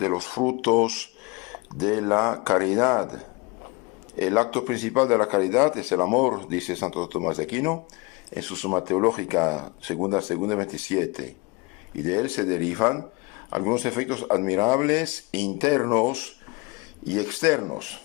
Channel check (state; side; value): quieter; right; 26.5 dB